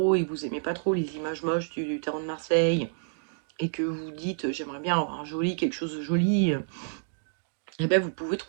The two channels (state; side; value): silent; left; digital silence